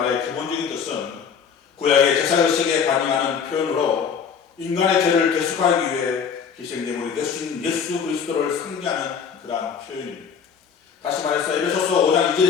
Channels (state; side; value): quieter; right; 6.8 dB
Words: 기본적인 뜻은 구약의 제사의식에 반영하는 표현으로 인간의 죄를 대속하기 위해 희생제물이 되신 예수 그리스도를 상징하는 그러한 표현입니다. 다시 말해서 에베소서 5장